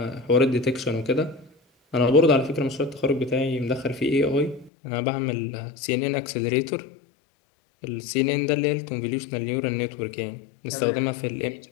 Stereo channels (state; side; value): drops out; right; at 4.7 s